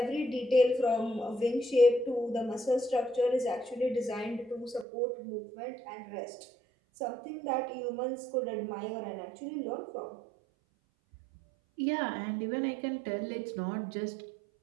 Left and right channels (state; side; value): drops out; left; at 4.9 s